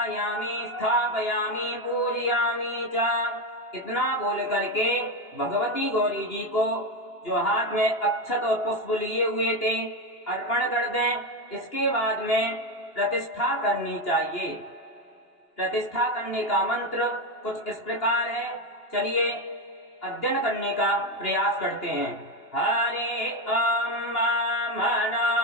स्थापयामि पूजयामि च। इतना बोल करके भगवती गौरी जी को जो हाथ में अक्षत और पुष्प लिए हुए थे अर्पण कर दें। इसके बाद में प्रतिष्ठा करनी चाहिए। प्रतिष्ठा करने का मंत्र कुछ इस प्रकार है, चलिए अध्ययन करने का प्रयास करते हैं। हरे अम्मा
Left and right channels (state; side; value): late; right; 2.9 ms